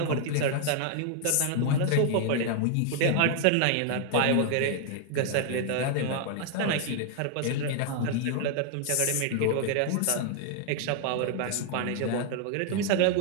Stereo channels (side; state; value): both; different; correlation 0.00